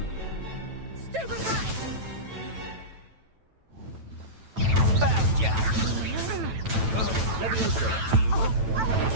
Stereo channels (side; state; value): left; late; 9.1 ms